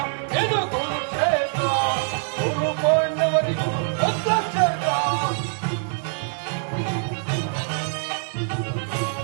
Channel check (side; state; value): left; silent; digital silence